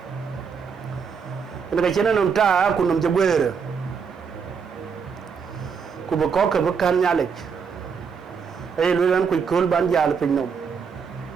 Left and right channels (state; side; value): quieter; left; 6.2 dB